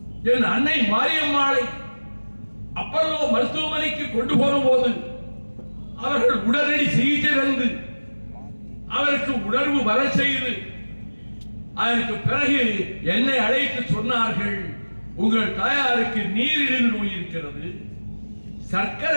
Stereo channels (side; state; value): both; inverted; correlation -1.00